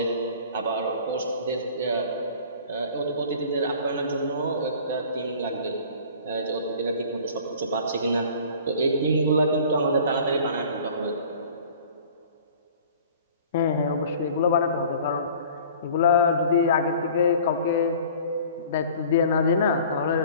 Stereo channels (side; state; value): both; inverted; correlation -0.47